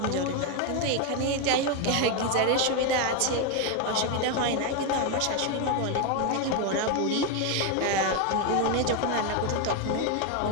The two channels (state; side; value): different; both; correlation 0.02